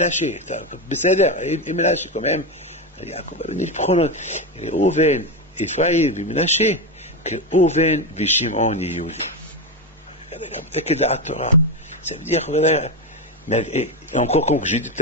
Il Ménaché quand même. Yaakov Avinu, il prend Oven, Ephraim, Ménaché, que Oven, Vishimon, Yiyuli. Quel da'at Torah. Ça veut dire, voilà. Mais encore comme j'ai dit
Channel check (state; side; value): normal; both; correlation 0.13